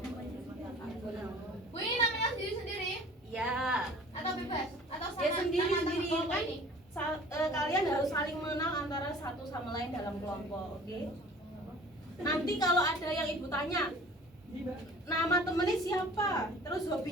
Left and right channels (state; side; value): normal; both; correlation 0.46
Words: Bu, ini namanya sendiri-sendiri Ya. atau bebas? Atau sama Ya sendiri-sendiri nama-nama kelompok kan. ini? Kalian harus saling mengenal antara satu sama lain dalam kelompok, oke? Nanti kalau ada yang Ibu tanya, nama temennya siapa, terus